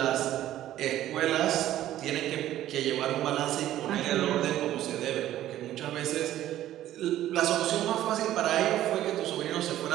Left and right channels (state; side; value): quieter; left; 13.2 dB